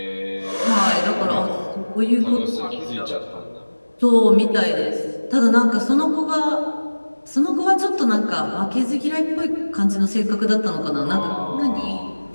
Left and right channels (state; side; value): inverted; both; correlation -1.00